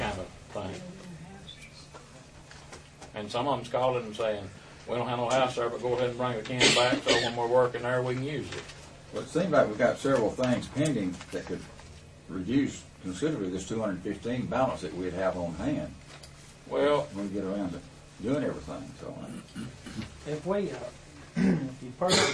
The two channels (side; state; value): both; identical; correlation 1.00